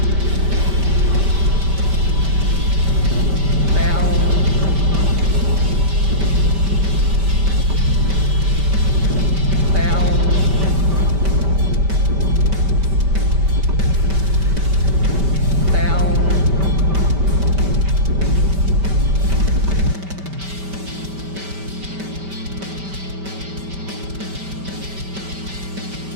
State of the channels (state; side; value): late; left; 5.1 ms